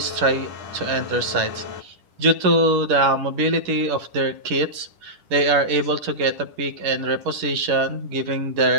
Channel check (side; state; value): left; late; 10 ms